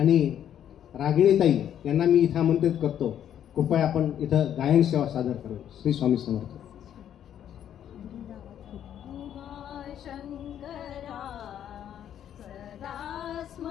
रागिणी ताई यांना मी इथं आमंत्रित करतो, कृपया आपण इथं गायन सेवा सादर करू. श्री स्वामी समर्थ. शंकरा सदा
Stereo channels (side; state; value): right; quieter; 10.1 dB